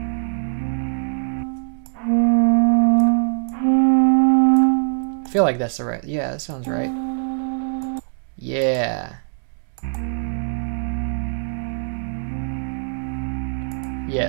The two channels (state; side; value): silent; left; digital silence